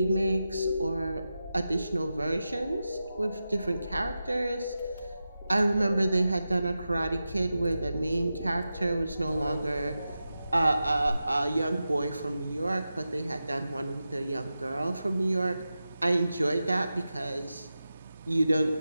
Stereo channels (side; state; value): both; inverted; correlation -0.92